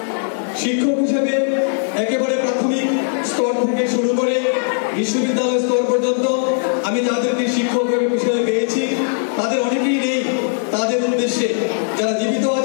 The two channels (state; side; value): silent; right; 65 dB below the other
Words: শিক্ষক হিসেবে একেবারে প্রাথমিক স্তর থেকে শুরু করে বিশ্ববিদ্যালয় স্তর পর্যন্ত আমি যাদেরকে শিক্ষক হিসেবে পেয়েছি তাদের অনেকেই নেই। তাদের উদ্দেশ্যে যারা জীবিত